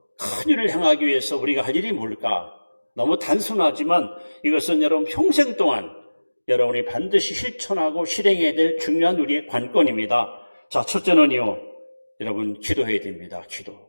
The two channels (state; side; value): inverted; both; correlation -1.00